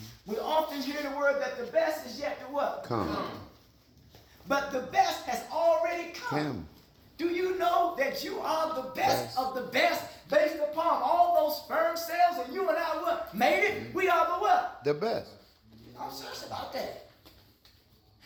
We often hear the word that the best is yet to what? Come. But the best has already come. Do you know that you are the best of the best based upon all those sperm cells, and you and I what? Made it? We are the what? The best. I'm serious about that.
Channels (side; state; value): both; identical; correlation 1.00